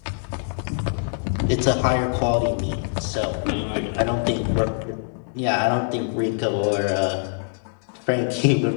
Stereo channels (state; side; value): silent; right; 63 dB below the other